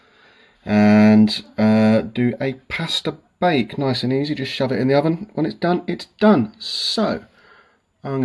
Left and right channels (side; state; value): both; identical; correlation 1.00